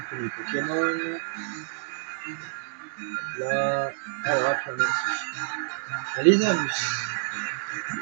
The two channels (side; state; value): left; silent; digital silence